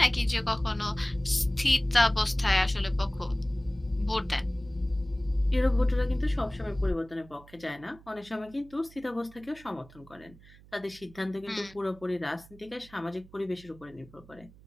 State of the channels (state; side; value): noise; right; hum, 23 dB below the sound